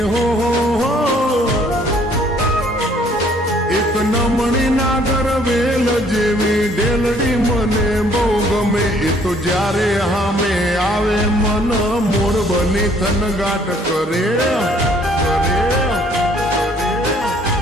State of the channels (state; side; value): normal; both; correlation 0.61